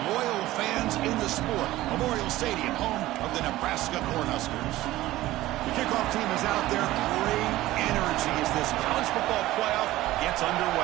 loyal fans in the sport. Memorial Stadium, home of the Nebraska Cornhuskers. The kickoff team is out there. Great energy as this college football playoff gets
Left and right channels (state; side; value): quieter; left; 16.4 dB